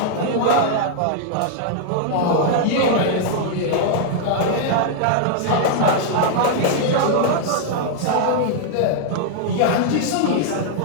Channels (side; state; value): both; different; correlation -0.01